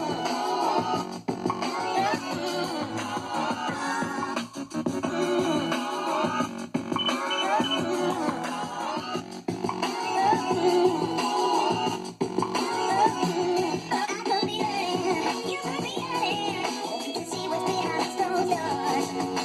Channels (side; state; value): both; identical; correlation 1.00